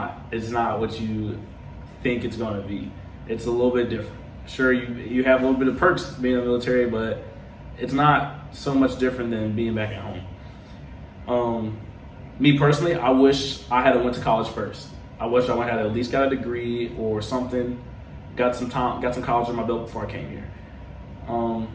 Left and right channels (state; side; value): identical; both; correlation 1.00